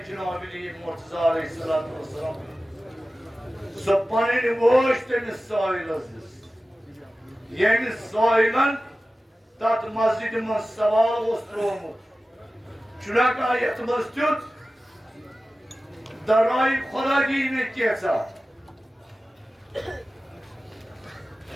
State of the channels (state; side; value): normal; both; correlation 0.95